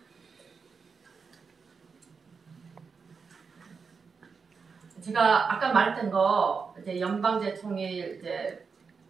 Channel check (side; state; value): left; quieter; 5.4 dB